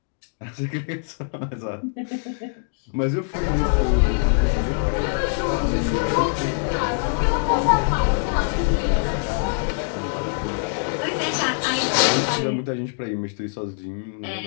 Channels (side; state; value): right; silent; digital silence